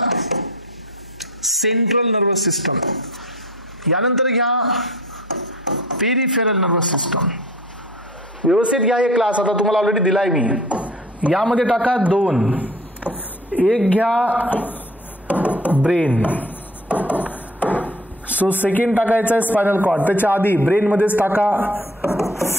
सेंट्रल नर्वस सिस्टम. यानंतर घ्या पेरिफेरल नर्वस सिस्टम. व्यवस्थित घ्या हे क्लास, आता तुम्हाला ऑलरेडी दिलाय मी. यामध्ये टाका 2. एक घ्या ब्रेन. सो सेकंड टाकायचा आहे स्पायनल कॉर्ड. त्याच्या आधी ब्रेन मध्येच टाका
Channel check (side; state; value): both; normal; correlation 0.46